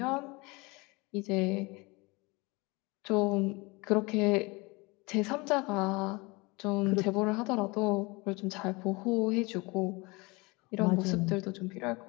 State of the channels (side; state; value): right; quieter; 25.7 dB